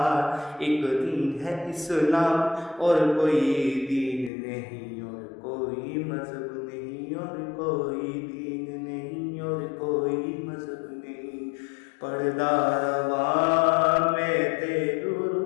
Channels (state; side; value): drops out; right; at 4.3 s